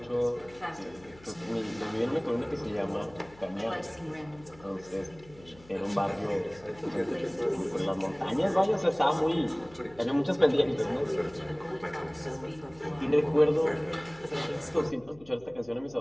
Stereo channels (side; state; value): left; noise; hum, 23 dB below the sound